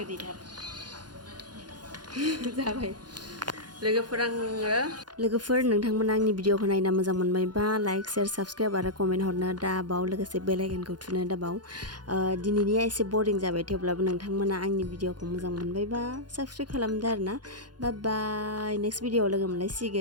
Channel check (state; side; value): late; left; 0.70 ms